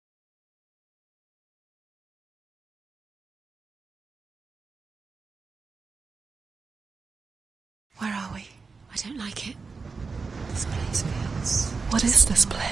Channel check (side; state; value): left; quieter; 4.6 dB